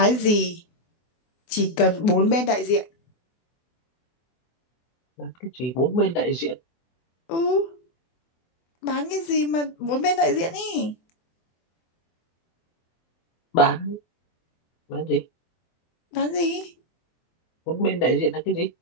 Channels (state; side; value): late; right; 24 ms